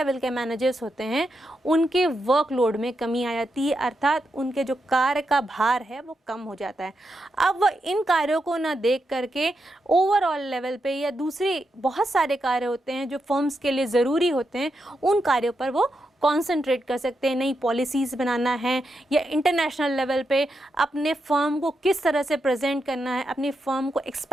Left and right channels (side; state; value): both; normal; correlation 0.85